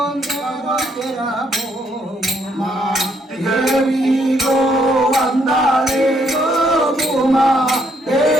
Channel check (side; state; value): both; normal; correlation 0.71